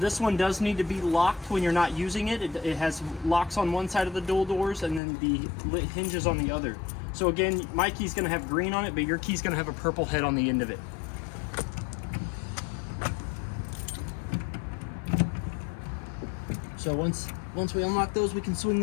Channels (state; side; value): drops out; right; at 5.0 s